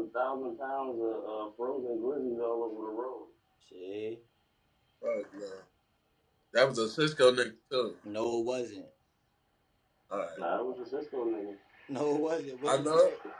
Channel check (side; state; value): both; identical; correlation 1.00